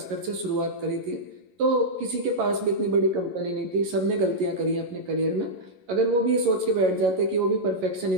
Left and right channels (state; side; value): late; left; 11 ms